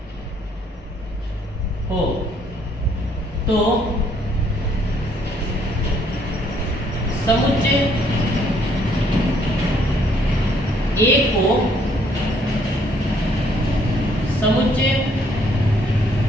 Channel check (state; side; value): normal; both; correlation 0.66